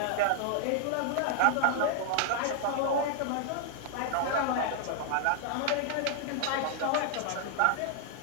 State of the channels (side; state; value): both; different; correlation 0.00